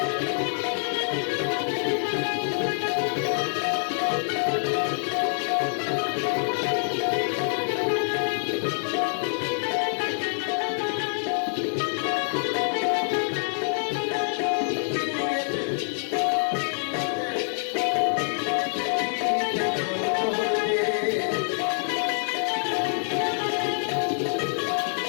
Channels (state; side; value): silent; right; digital silence